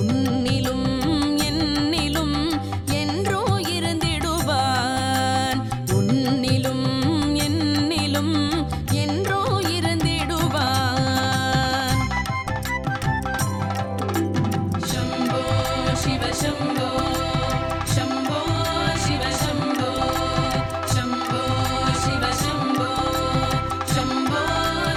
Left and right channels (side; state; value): both; identical; correlation 1.00